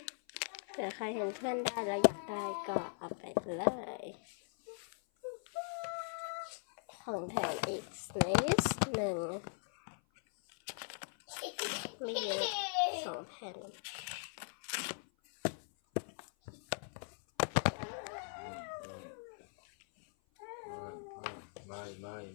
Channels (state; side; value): silent; right; 51 dB below the other